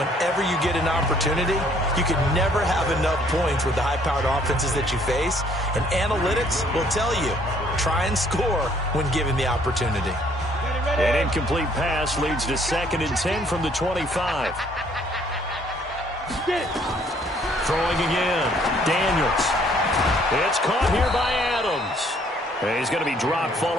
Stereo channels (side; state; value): both; normal; correlation 0.63